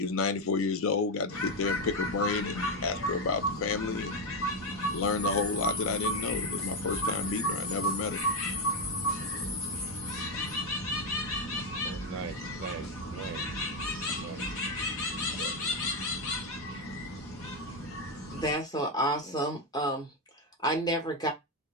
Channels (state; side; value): normal; both; correlation 0.07